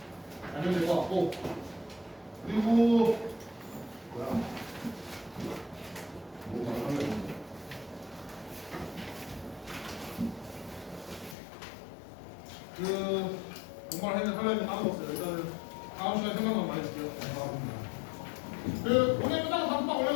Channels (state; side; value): drops out; right; at 11.4 s